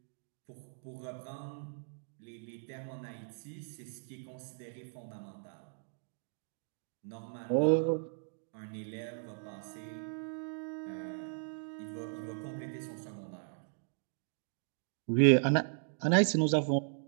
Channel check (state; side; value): silent; left; digital silence